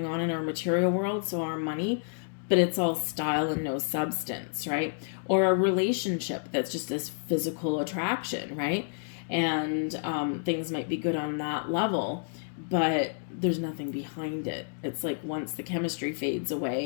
on in our material world, so our money, but it's all style and no substance, right? Or a relationship that's just this physical attraction, right? And things might be good on that level, but there's nothing behind it. It's like once the chemistry fades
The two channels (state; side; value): silent; right; digital silence